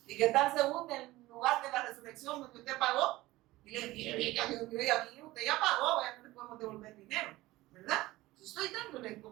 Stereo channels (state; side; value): quieter; left; 18.3 dB